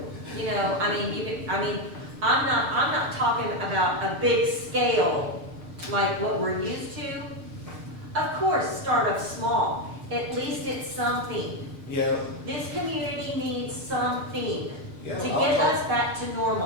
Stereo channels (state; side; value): late; left; 6.4 ms